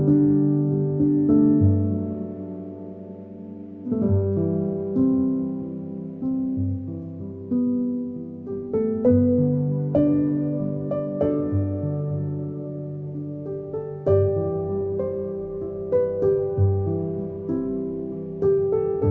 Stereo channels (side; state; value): both; identical; correlation 1.00